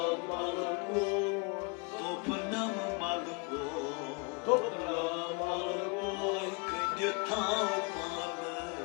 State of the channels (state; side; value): quieter; right; 32.6 dB